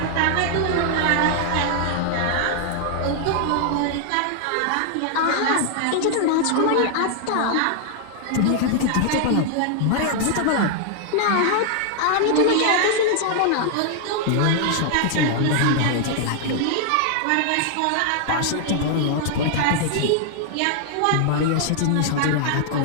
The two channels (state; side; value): different; both; correlation 0.00